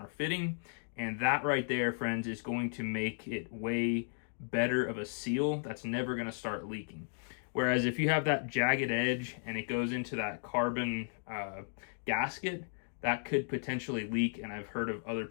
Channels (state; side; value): silent; right; digital silence